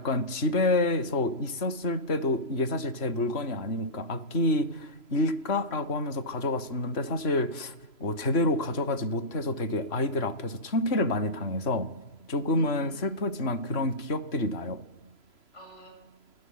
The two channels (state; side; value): late; right; 3.0 ms